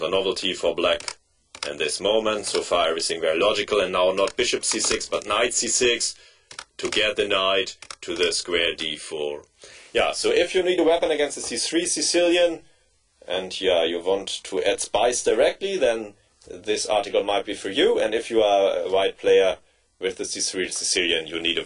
a novelty for black in this moment. So far everything very logical, and now not bishop c6 but knight c6 to get the knight to the square d4. Yeah, so if you need a weapon against the c3 Sicilian, and yeah, you want to add spice directly, then this article might be for you. And if you are a white player with the c3 Sicilian, you need a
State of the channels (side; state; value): both; identical; correlation 1.00